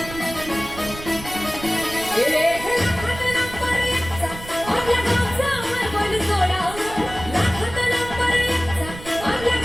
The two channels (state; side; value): noise; right; rumble, 13 dB below the sound